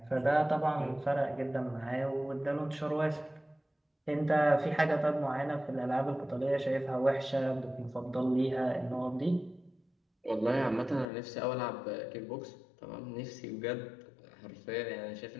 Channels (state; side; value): drops out; right; at 11.1 s